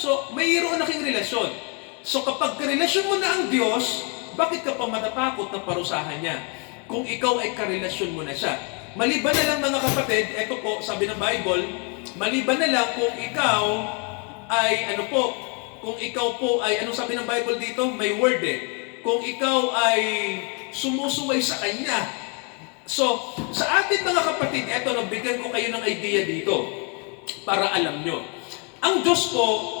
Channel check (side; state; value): right; quieter; 35.8 dB